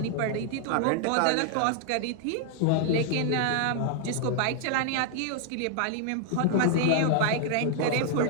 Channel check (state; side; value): different; both; correlation 0.00